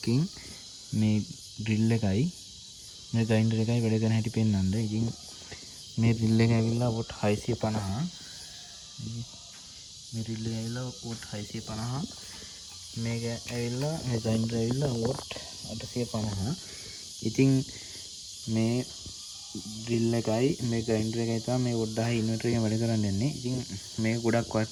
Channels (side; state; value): both; identical; correlation 1.00